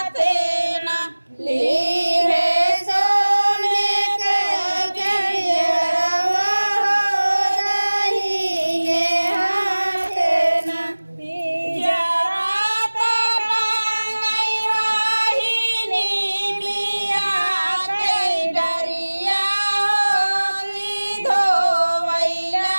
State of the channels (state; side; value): inverted; both; correlation -1.00